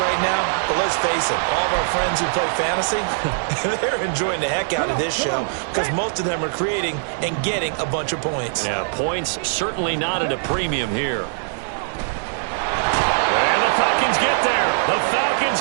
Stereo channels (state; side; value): silent; left; 65 dB below the other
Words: now. But let's face it, all of our friends who play fantasy, they're enjoying the heck out of this show because most of them are creating and getting a bunch of points. Yeah, points certainly not at a premium here. And the Falcons get there. The